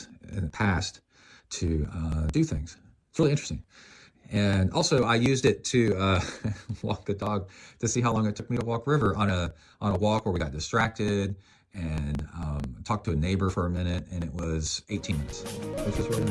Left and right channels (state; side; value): identical; both; correlation 1.00